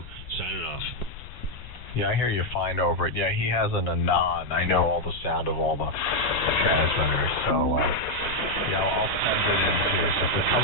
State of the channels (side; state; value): left; noise; rumble, 15 dB below the sound